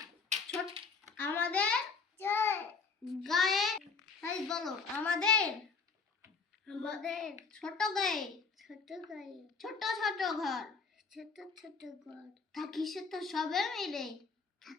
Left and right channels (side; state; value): right; quieter; 4.9 dB